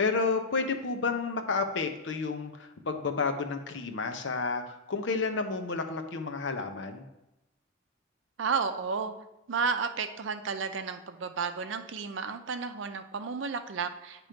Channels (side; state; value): both; normal; correlation -0.13